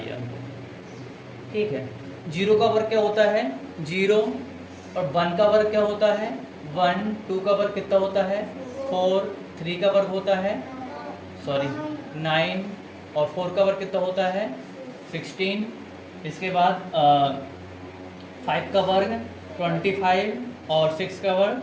अंक। ठीक है, 0 का वर्ग क्या होता है, 0, और 1 का वर्ग क्या होता है, 1, 2 का वर्ग कितना होता है, 4, 3 का वर्ग होता है 9, और 4 का वर्ग कितना होता है 16। इसके बाद 5 का वर्ग 25, और 6 का वर्ग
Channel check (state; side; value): identical; both; correlation 1.00